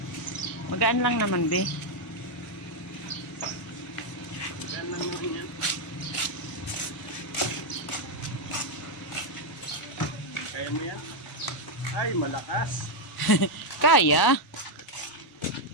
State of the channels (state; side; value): late; right; 1.0 ms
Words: Magaan lang naman, be. Magaan lang naman yan. Kaya mo yan? Ay, malakas. Kaya.